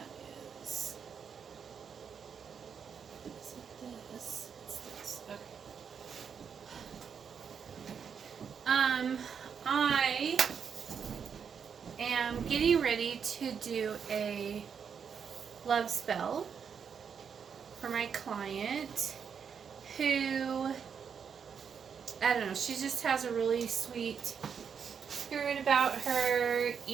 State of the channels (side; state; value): left; quieter; 6.9 dB